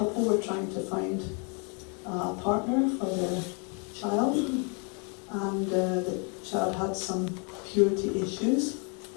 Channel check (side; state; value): right; quieter; 35.3 dB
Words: were trying to find a partner for their child, and the child had some purity issues